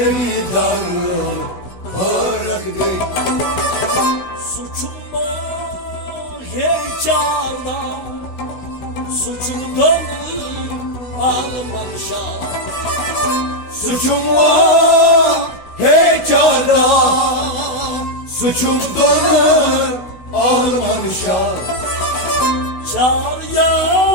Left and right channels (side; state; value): right; late; 16 ms